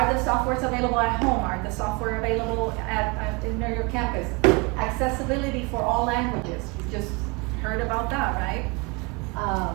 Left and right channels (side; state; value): left; quieter; 28.2 dB